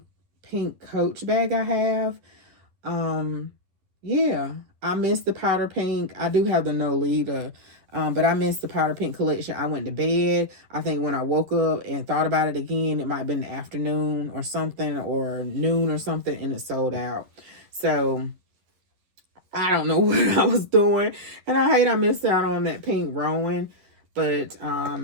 pink Coach bag I have. Yeah, I missed the powder pink. I do have the Nolita, but I missed the powder pink collection. I went to bed. I think when I woke up and thought about it again, it might have been the afternoon or something, or noon or something, and it sold out. So I don't know what I was doing, and I hate I missed out on that pink ROWAN. But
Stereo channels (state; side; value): late; left; 11 ms